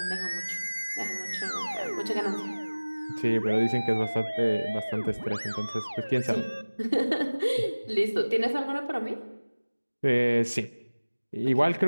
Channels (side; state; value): both; inverted; correlation -1.00